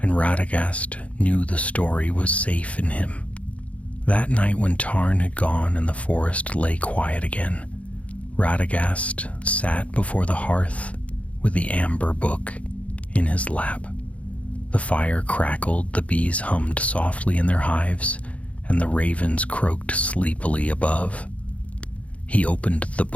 and Radagast knew the story was safe in him. That night when Tarn had gone and the forest lay quiet again, Radagast sat before the hearth with the amber book in his lap. The fire crackled, the bees hummed softly in their hives, and the ravens croaked sleepily above. He opened the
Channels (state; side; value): late; right; 0.065 ms